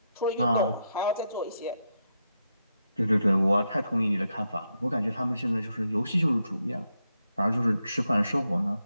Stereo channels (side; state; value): both; inverted; correlation -0.83